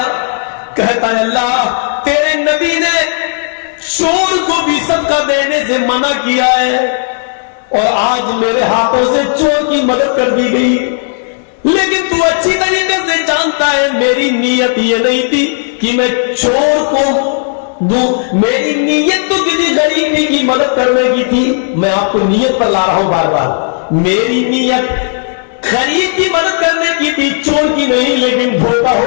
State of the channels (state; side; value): silent; right; digital silence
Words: کہتا ہے اللہ تیرے نبی نے چور کو بھی صدقہ دینے سے منع کیا ہے اور آج میرے ہاتھوں سے چور کی مدد کر دی گئی، لیکن تو اچھی طریقے سے جانتا ہے میری نیت یہ نہیں تھی کہ میں چور کو دوں، میری نیت تو کسی غریب کی مدد کرنے کی تھی۔ میں آپ کو نیت پر لا رہا ہوں بار بار، میری نیت غریب کی مدد کرنے کی تھی، چور کی نہیں، لیکن دھوکہ